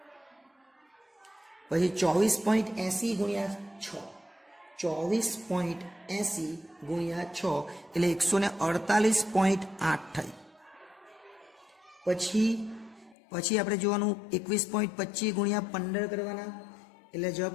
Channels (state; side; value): drops out; right; at 13.2 s